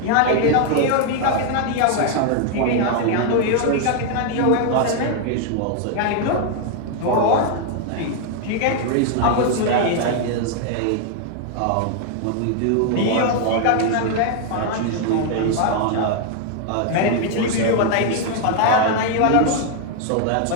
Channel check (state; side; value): different; both; correlation 0.00